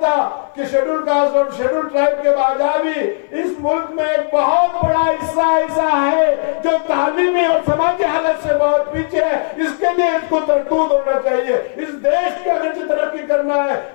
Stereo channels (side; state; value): right; silent; 59 dB below the other